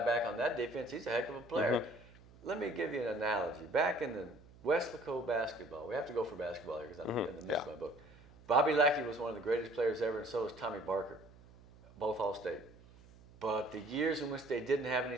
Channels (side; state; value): right; noise; hum, 23 dB below the sound